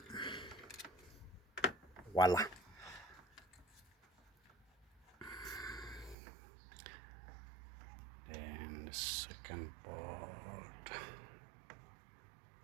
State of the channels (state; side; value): drops out; left; at 6.2 s